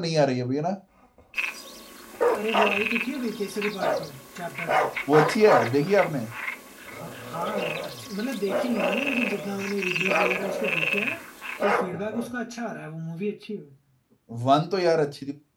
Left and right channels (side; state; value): both; identical; correlation 1.00